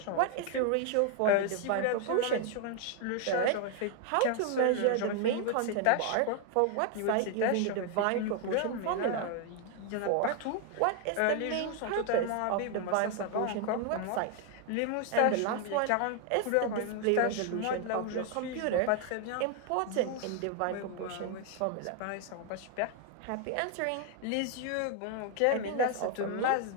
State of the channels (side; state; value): both; different; correlation 0.01